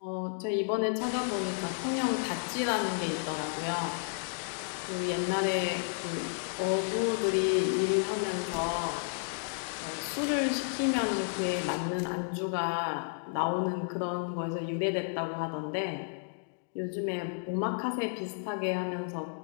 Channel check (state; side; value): silent; right; digital silence